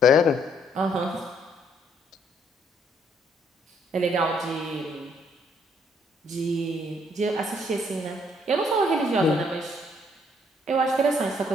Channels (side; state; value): both; normal; correlation 0.67